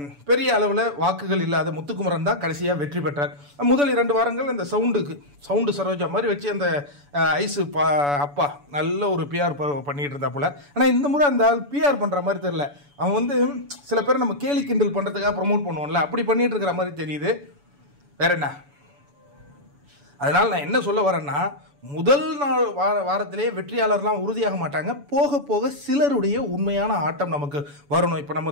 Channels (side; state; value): left; late; 7.0 ms